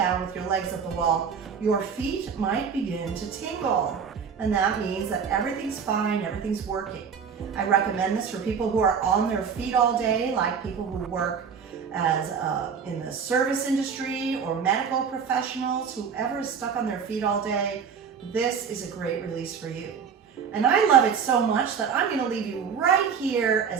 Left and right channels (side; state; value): left; quieter; 6.7 dB